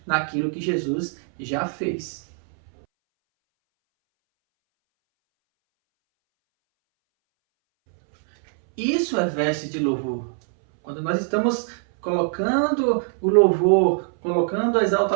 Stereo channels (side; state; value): left; silent; 62 dB below the other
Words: naquilo que Jesus já fez. Isso é veste de louvor. Quando nós estamos colocando o louvor, colocando a